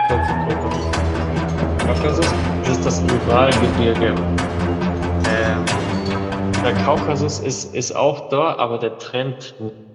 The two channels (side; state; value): both; identical; correlation 1.00